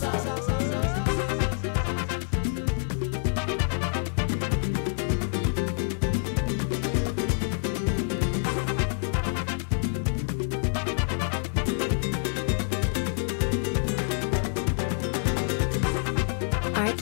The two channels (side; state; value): right; silent; 60 dB below the other